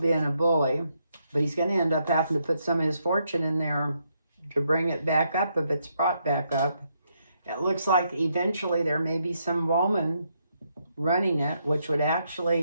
a bully. But he's going to end up having to put some of his fortune in there to bring it back up if it's brought back up. It looks like eventually there may be some woman running it, which would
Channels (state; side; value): inverted; both; correlation -0.77